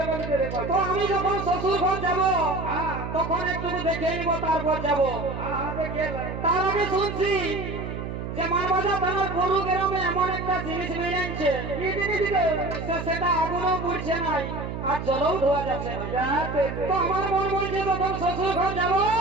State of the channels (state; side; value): noise; right; hum, 6 dB below the sound